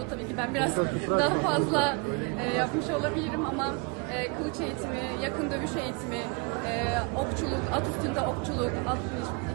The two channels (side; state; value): left; quieter; 32.1 dB